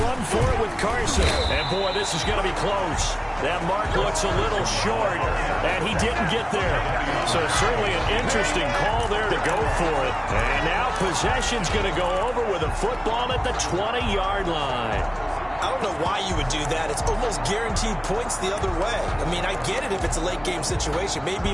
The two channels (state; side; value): identical; both; correlation 1.00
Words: for it with Carson. And, boy, this is going to be close. That mark looks a little short, and he didn't get there. So certainly an interesting call there to go for it. And now possession's going to go over with a football at the 20-yard line. I don't know why you would do that. It's almost guaranteed points the other way. I mean, I get it if it's a late-game situation, maybe